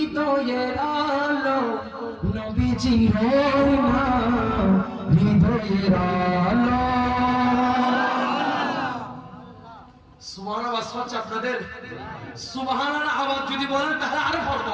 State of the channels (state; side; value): identical; both; correlation 1.00